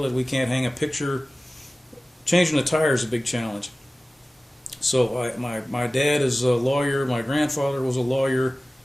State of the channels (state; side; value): normal; both; correlation 0.97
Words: We can't hang a picture. Changing a tire is a big challenge. So my dad is a lawyer. My grandfather was a lawyer.